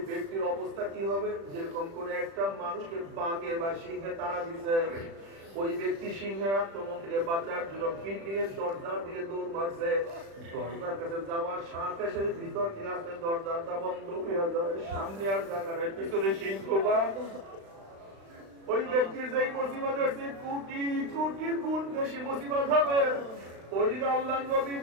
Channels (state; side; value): late; left; 36 ms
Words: ব্যক্তির অবস্থা কি হবে? যেরকম কোন একটা মানুষকে বাঘে বা সিংহে তাড়া দিছে, ওই ব্যক্তি সিংহের আক্রমণ থেকে বাঁচার জন্য বিল্ডিং এর দরজার দিকে দৌড় মারছে। দরজার কাছে যাওয়ার সাথে সাথে ভিতর থেকে আসতে দরজাটা বন্ধ হয়ে যায়। সামনে আর জায়গা নাই, পিছনে সিংহ বা ওই ব্যক্তির যেই মুসিবত হচ্ছে কোটি কোটি গুণ বেশি মুসিবত হবে। ওইদিকে আল্লাহর নবী